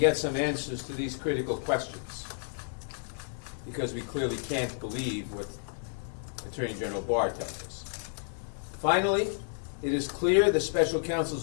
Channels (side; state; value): right; silent; digital silence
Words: some answers to these critical questions, because we clearly can't believe what Attorney General Barr tells us. Finally, it is clear the Special